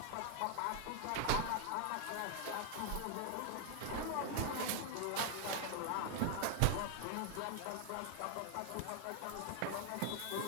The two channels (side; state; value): both; different; correlation 0.00